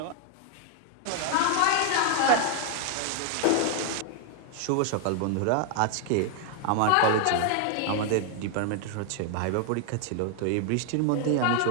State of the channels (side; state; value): both; different; correlation 0.00